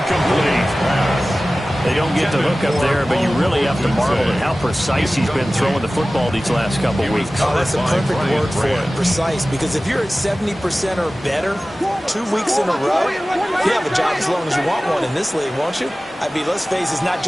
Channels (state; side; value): normal; both; correlation 0.97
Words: They don't get the hook up there, but you really have to marvel at how precise he's been throwing the football these last couple weeks. Oh, that's a perfect word for it, precise, because if you're at 70% or better 2 weeks in a row, you have a job as long as you want one in this league, won't you? I mean, let's face it, it's not